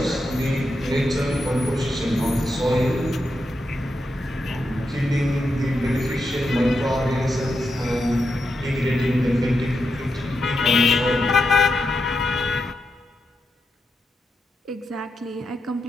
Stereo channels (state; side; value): normal; both; correlation 0.85